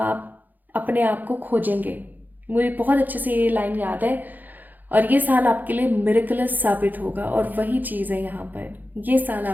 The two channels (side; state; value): left; late; 0.085 ms